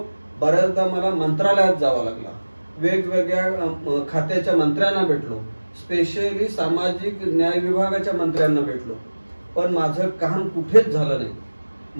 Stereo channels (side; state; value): both; inverted; correlation -1.00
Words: बऱ्याचदा मला मंत्रालयात जावं लागला, वेगवेगळ्या खात्याच्या मंत्र्यांना भेटलो, स्पेशली सामाजिक न्याय विभागाच्या मंत्र्यांना भेटलो, पण माझं काम कुठेच झालं नाही.